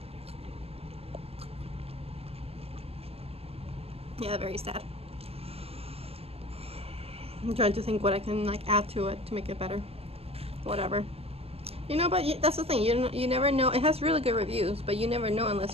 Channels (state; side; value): late; left; 0.28 ms